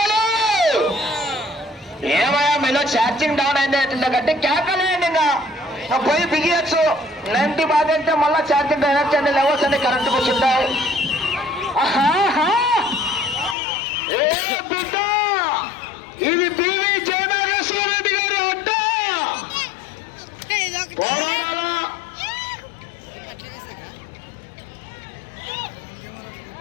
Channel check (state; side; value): drops out; right; at 13.6 s